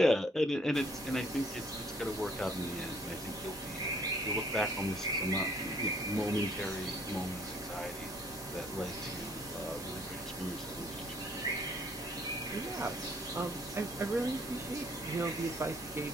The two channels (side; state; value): both; normal; correlation 0.62